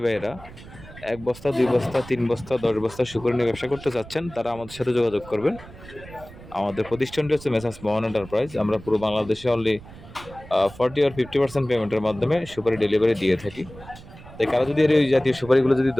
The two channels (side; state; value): right; noise; rumble, 18 dB below the sound